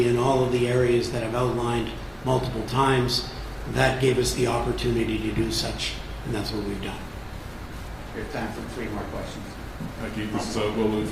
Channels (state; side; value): identical; both; correlation 1.00